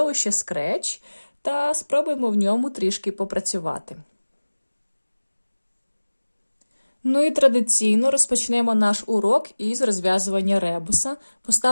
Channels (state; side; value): inverted; both; correlation -1.00